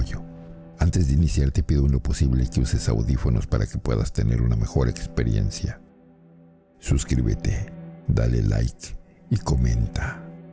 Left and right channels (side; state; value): both; identical; correlation 1.00